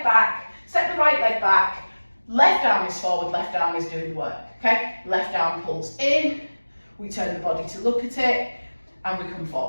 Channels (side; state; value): both; inverted; correlation -1.00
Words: back, step the right leg back, left arm is forward, left arm is doing the work, okay? Left arm pulls in, we turn the body to look at it, and we come